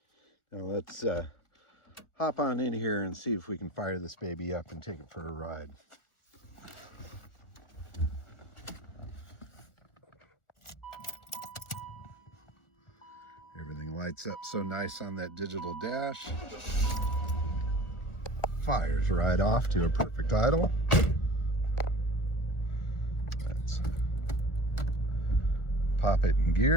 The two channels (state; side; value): late; right; 1.4 ms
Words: Now let's hop on in here and see if we can fire this baby up and take it for a ride. Everything lights up so nice on that digital dash. Fires right off to a perfect idle. Let's pop it in